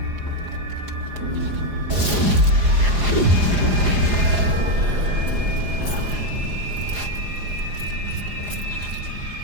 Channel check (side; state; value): left; late; 4.9 ms